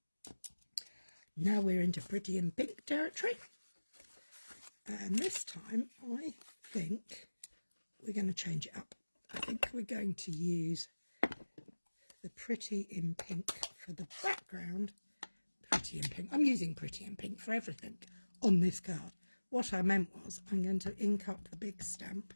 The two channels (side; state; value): both; inverted; correlation -1.00